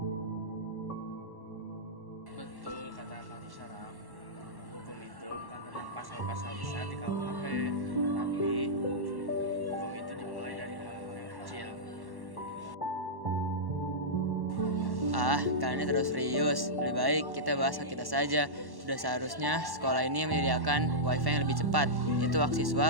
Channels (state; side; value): late; left; 1.1 ms